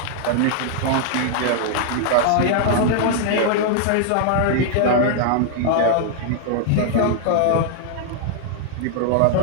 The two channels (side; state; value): both; different; correlation -0.01